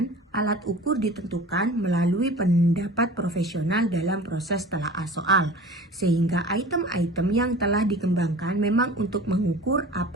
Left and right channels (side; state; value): both; normal; correlation 0.40